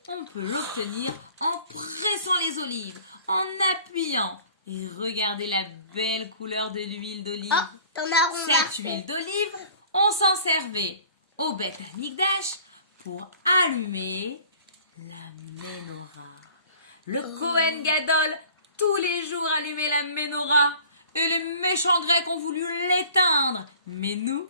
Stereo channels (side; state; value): both; inverted; correlation -0.49